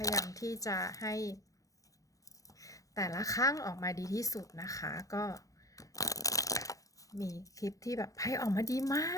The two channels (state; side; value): late; right; 0.16 ms